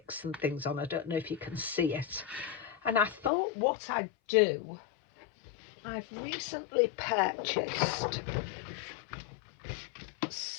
and things on. I don't know if you can see it. And I thought what I'd do, I've recently purchased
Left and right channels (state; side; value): drops out; right; at 3.3 s